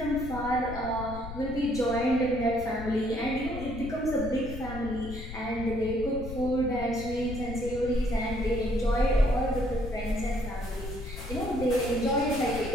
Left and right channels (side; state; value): left; noise; rumble, 9 dB below the sound